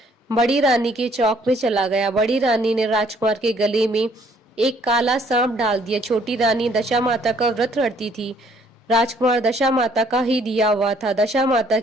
बड़ी रानी के चौक में चला गया। बड़ी रानी ने राजकुमार के गले में एक काला सांप डाल दिया। छोटी रानी दशा माता का व्रत रखती थी। राजकुमार दशा माता का ही दिया हुआ था। दशा माता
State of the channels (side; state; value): both; normal; correlation 0.63